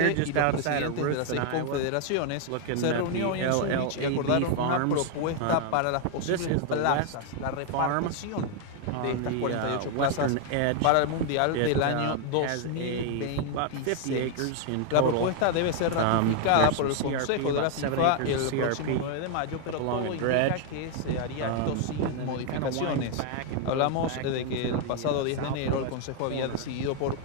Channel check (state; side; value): different; both; correlation 0.00